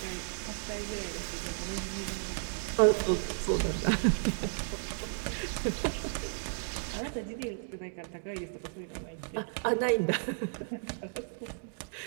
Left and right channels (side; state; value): left; silent; digital silence